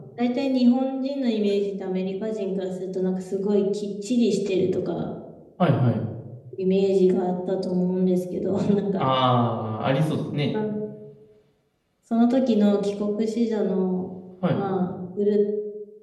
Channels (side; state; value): both; identical; correlation 1.00